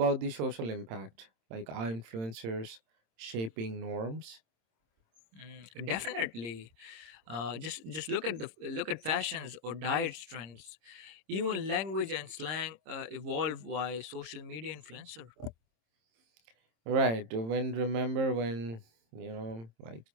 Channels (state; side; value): late; left; 26 ms